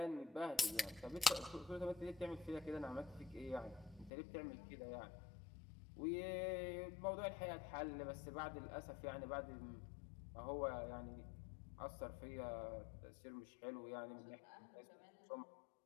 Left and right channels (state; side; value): drops out; right; at 4.1 s